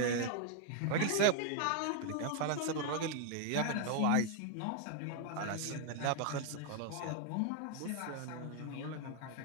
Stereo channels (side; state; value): both; different; correlation 0.00